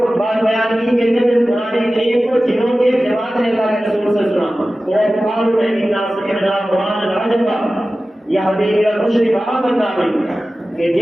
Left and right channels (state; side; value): normal; both; correlation 0.95